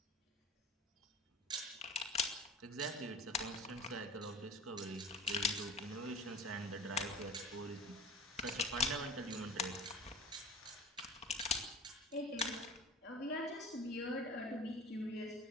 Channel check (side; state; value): both; normal; correlation 0.38